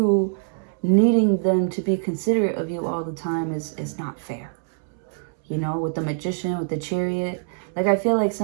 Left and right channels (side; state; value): left; silent; 63 dB below the other